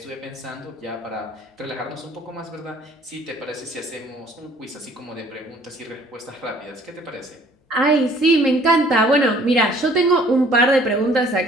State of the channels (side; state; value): both; normal; correlation 0.56